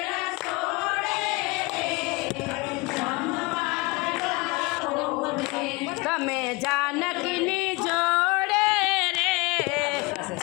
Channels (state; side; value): quieter; right; 25.6 dB